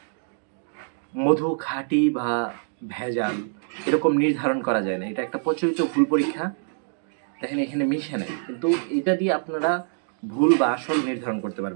মধু খাঁটি বা ভেজাল এরকম নির্ধারণ করা যায় না। এটা একটা প্রচলিত ভুল পরীক্ষা। দেখেন, এখানে মিশে নাই, কিন্তু এটা দিয়ে আপনারা ভুল বা আসল নির্ধারণ করতে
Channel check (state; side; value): silent; left; digital silence